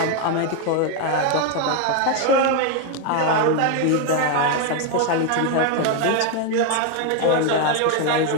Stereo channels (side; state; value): both; different; correlation 0.01